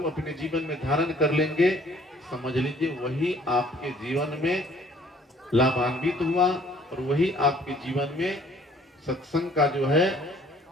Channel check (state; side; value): normal; both; correlation 0.58